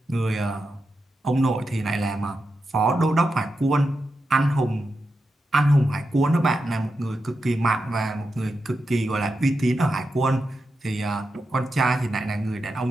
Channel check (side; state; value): both; normal; correlation 0.88